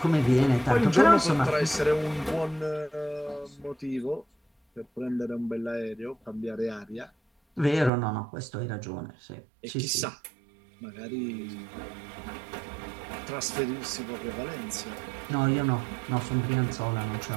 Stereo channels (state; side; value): drops out; left; at 7.9 s